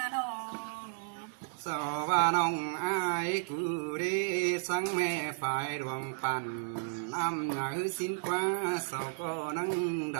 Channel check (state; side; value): silent; left; digital silence